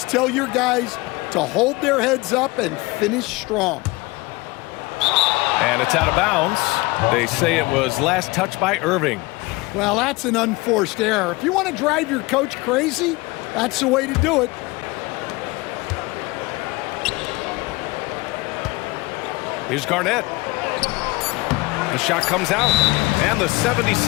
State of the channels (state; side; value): quieter; right; 23.2 dB